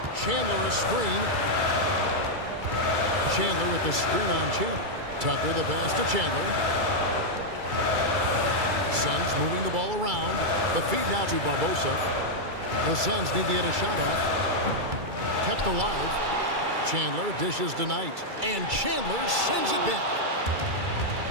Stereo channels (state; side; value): late; left; 2.3 ms